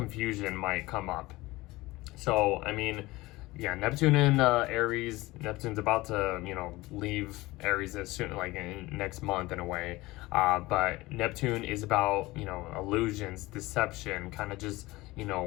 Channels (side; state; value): right; quieter; 20.1 dB